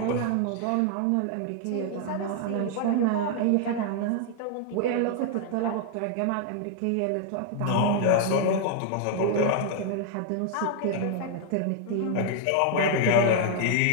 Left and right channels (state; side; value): different; both; correlation 0.00